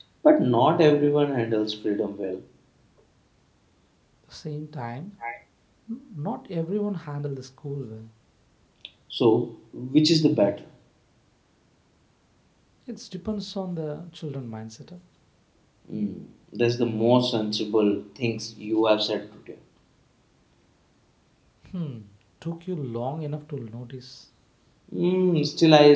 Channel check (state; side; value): identical; both; correlation 1.00